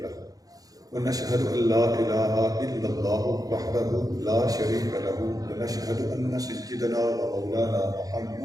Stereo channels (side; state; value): left; late; 0.18 ms